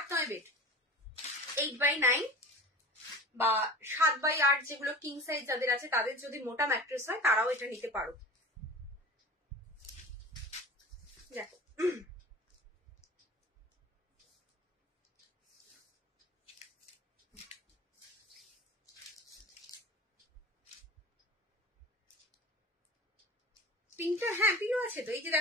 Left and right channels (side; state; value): both; normal; correlation 0.36